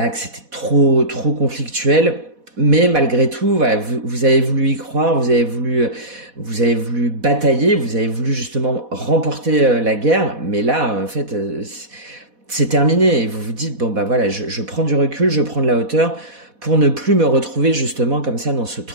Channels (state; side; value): late; left; 4.1 ms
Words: que c'était trop conflictuel. Mais malgré tout, voilà, vous avez voulu y croire, vous avez voulu batailler, vous avez voulu justement remporter la guerre. Mais là, en fait, c'est terminé. Et vous vous dites, bon bah voilà, je prends du recul, je prends de la hauteur pour ne plus me retrouver justement comme ça dans ce